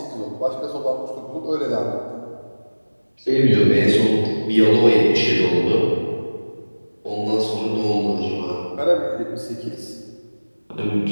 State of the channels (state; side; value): inverted; both; correlation -1.00